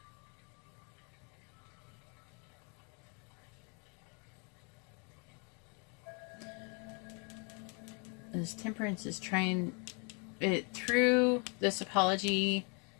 This Temperance is trying it through this apology.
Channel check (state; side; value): quieter; right; 35.9 dB